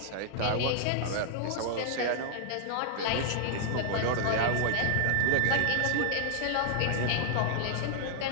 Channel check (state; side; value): different; both; correlation -0.01